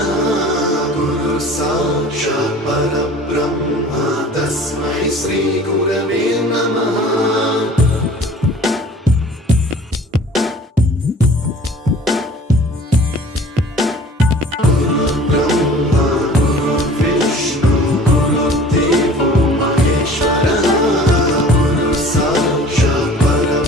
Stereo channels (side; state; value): both; normal; correlation 0.46